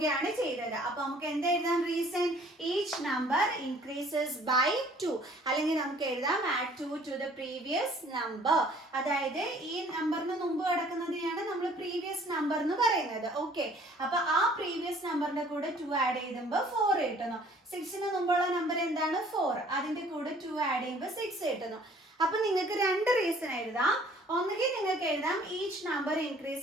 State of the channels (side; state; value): both; normal; correlation 0.55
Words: ചെയ്തത്. അപ്പൊ നമുക്ക് എന്താ എഴുതാം? Reason each number increases by 2. അല്ലെങ്കിൽ നമുക്ക് എഴുതാം add 2 to the previous number. അതായത് ഈ നമ്പറിന് മുമ്പ് കിടക്കുന്നതിനെയാണ് നമ്മൾ പ്രീവിയസ് നമ്പർ എന്ന് പറയുന്നത്. ഓക്കെ, അപ്പൊ ആ പ്രീവിയസ് നമ്പറിന്റെ കൂടെ 2 ആഡ് ചെയ്യുമ്പോൾ 4 കിട്ടുന്നു. 6ന് മുമ്പുള്ള നമ്പർ എന്താണ്? 4. അതിന്റെ കൂടെ 2 ആഡ് ചെയ്യുമ്പോൾ 6 കിട്ടുന്നു. അപ്പൊ നിങ്ങൾക്ക് 2 റീസൺ എഴുതാം. ഒന്നുകിൽ നിങ്ങൾക്ക് എഴുതാം ഈച്ച് നമ്പർ